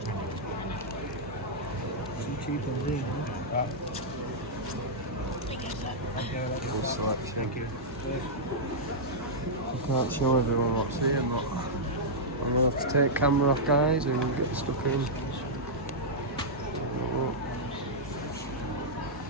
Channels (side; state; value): both; normal; correlation -0.08